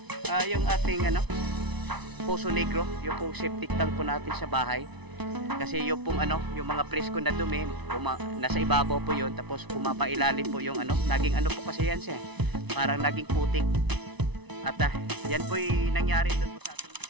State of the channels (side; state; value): left; late; 1.0 ms